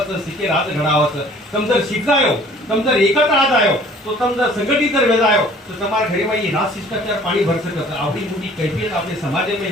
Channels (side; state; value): both; normal; correlation 0.52